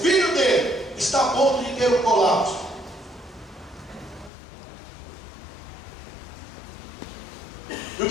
dele, está a ponto de ter um colapso. E o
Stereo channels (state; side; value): drops out; right; at 4.3 s